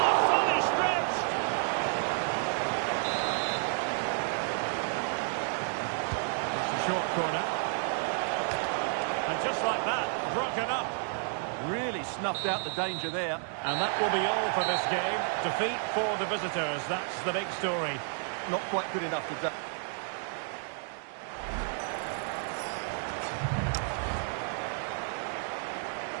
fully stretched. It's a short corner. And just like that, broken up. Really snuffed out the danger there. And that will be all for this game. Defeat for the visitors. That's the big story. Not quite good enough today.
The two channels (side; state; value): left; silent; 57 dB below the other